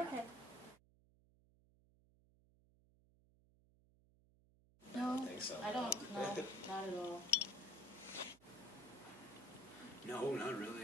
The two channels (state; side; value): noise; right; hum, 27 dB below the sound